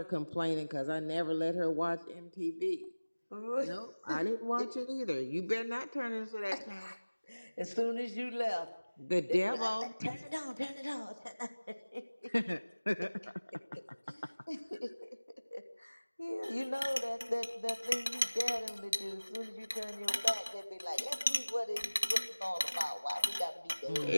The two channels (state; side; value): inverted; both; correlation -1.00